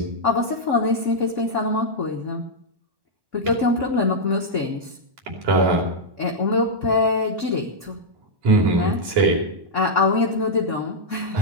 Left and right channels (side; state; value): left; late; 1.1 ms